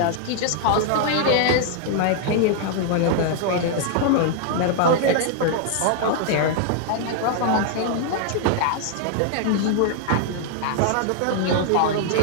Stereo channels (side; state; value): both; different; correlation 0.00